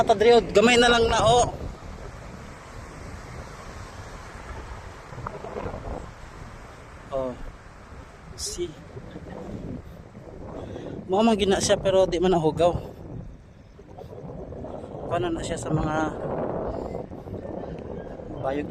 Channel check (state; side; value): identical; both; correlation 1.00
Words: ta diri, gamay na lang na oh. Oh. See. Mo man gina siya pero di man nahugaw. Paano na siya sa mga